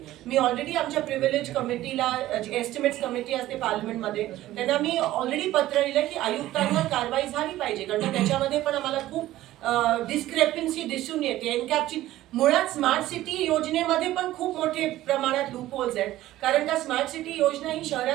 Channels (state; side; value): quieter; left; 15.1 dB